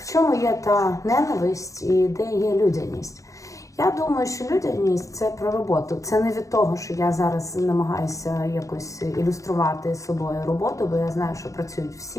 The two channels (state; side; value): late; right; 0.16 ms